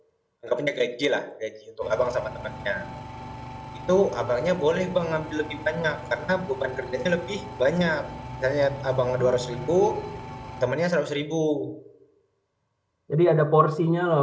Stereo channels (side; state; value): both; identical; correlation 1.00